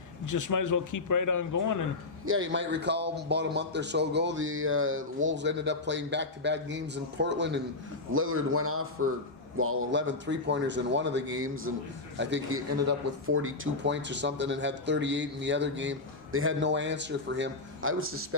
you just might as well keep right on going. And yeah, you might recall about a month or so ago, the Wolves ended up playing back-to-back games in Portland, and Lillard went off for 11 three-pointers in one of the games, and I think he ended up with 42 points or something and had 38 in the other game. They had no answer for him. I would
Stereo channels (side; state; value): right; quieter; 3.2 dB